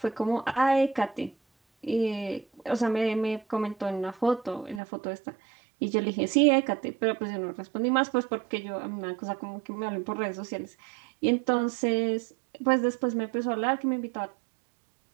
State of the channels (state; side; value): drops out; left; at 4.8 s